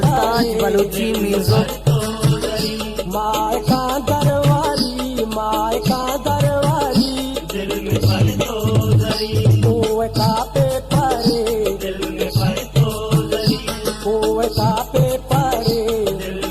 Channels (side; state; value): both; identical; correlation 1.00